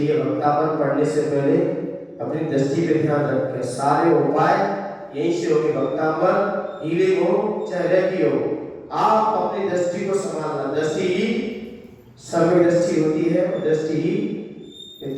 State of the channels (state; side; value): identical; both; correlation 1.00